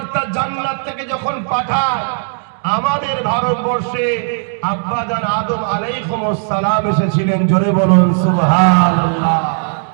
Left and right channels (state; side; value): silent; left; 68 dB below the other